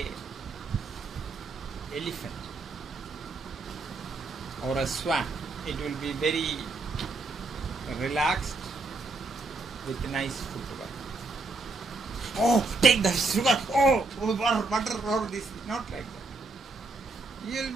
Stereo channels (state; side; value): quieter; left; 3.5 dB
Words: elephant or a swan. It will be very relaxed with nice footwork. Oh, take the sugar. Oh, butter, or this. Not like that. You will